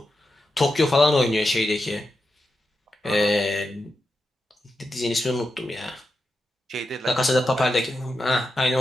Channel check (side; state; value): both; normal; correlation 0.88